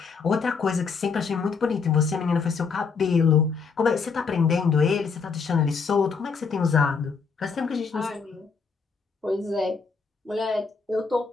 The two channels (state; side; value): quieter; right; 5.2 dB